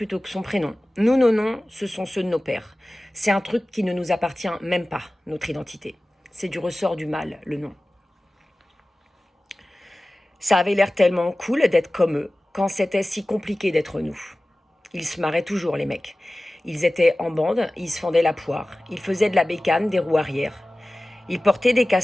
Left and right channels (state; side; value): normal; both; correlation 0.97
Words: que son prénom. Nous, nos noms, ce sont ceux de nos pères. C'est un truc qui ne nous appartient même pas, notre identité. C'est du ressort du mal, le nom. Ça avait l'air tellement cool d'être comme eux, quand c'était si compliqué d'être nous. Ils se marraient toujours, les mecs. Ils étaient en bande, ils se fendaient la poire, ils faisaient de la bécane, des roues arrière. Ils portaient des